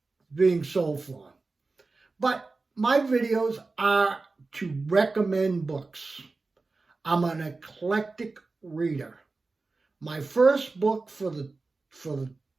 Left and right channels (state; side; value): quieter; left; 3.7 dB